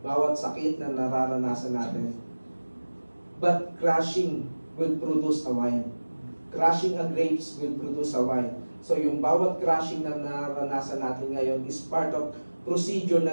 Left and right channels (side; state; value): both; inverted; correlation -1.00